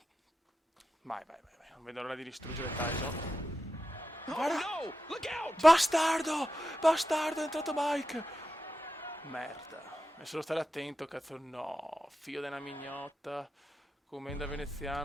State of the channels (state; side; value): normal; both; correlation 0.90